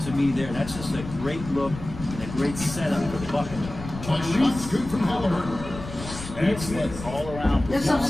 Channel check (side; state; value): left; noise; rumble, 11 dB below the sound